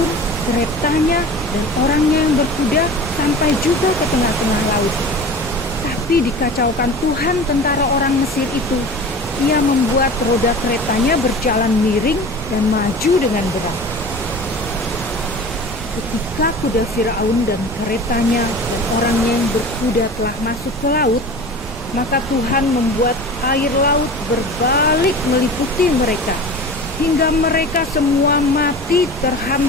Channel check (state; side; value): normal; both; correlation 0.36